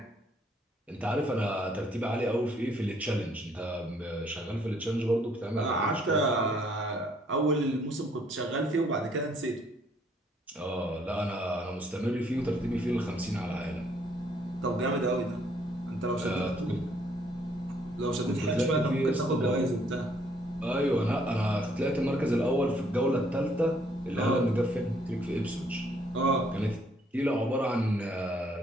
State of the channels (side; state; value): both; normal; correlation 0.66